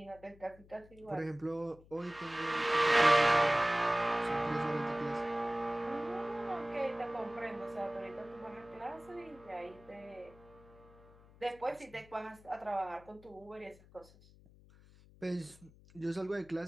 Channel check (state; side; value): noise; left; hum, 24 dB below the sound